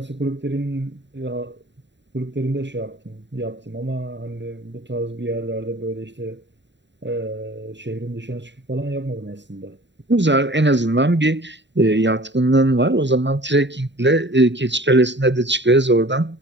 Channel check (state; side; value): late; left; 0.52 ms